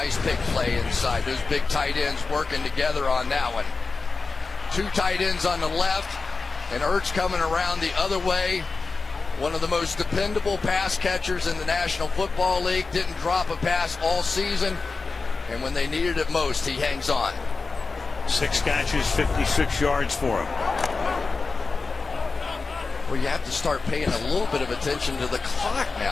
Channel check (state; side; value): quieter; right; 4.2 dB